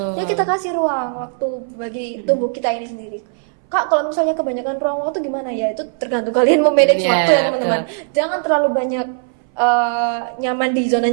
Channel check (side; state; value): left; silent; 62 dB below the other